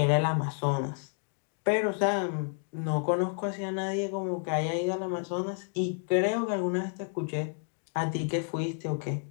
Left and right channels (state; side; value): silent; right; 56 dB below the other